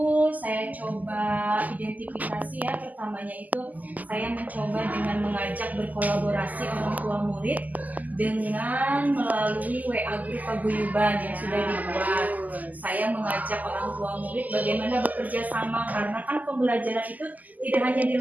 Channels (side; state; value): left; late; 0.080 ms